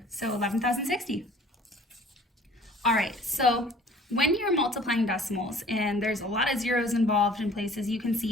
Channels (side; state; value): both; normal; correlation 0.52